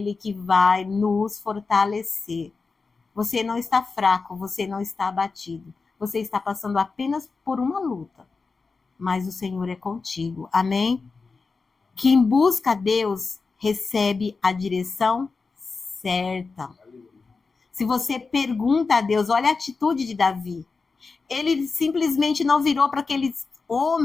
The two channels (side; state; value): right; quieter; 4.4 dB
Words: que vai nos fortalecer. Você não está fraco, você não está abatido. Você está passando apenas por uma luta. Mas o Senhor é contigo. Amém? Quem busca a Deus recebe a direção certa. Se você pergunta a Deus, olha a atitude de Davi. Ele simplesmente não virou para aqueles